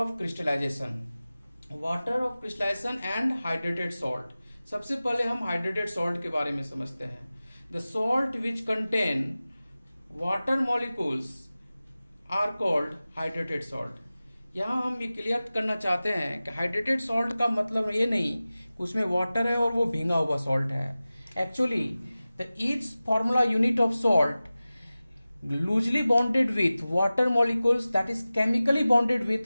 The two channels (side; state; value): both; inverted; correlation -0.97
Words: crystallization. Water of crystallization and hydrated salt. सबसे पहले हम हाइड्रेटेड सॉल्ट के बारे में समझते हैं। The salt which contain water molecules are called hydrated salt. यहाँ हम ये क्लियर करना चाहते हैं कि हाइड्रेटेड सॉल्ट का मतलब ये नहीं कि उसमें वाटर है और वो भींगा हुआ सॉल्ट है। Actually the each formula unit of salt loosely bonded with water molecules, that is chemically bonded with